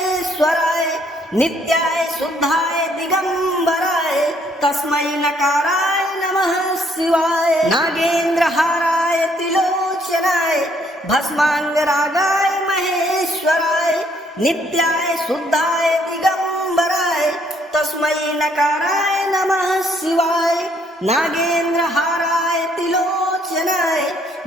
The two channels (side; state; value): both; normal; correlation 0.67